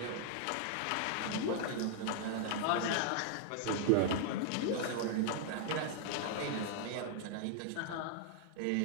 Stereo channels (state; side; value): different; both; correlation 0.00